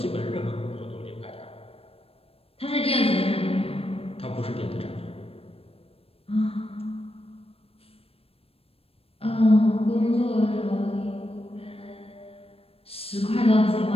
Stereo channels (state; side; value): late; right; 0.28 ms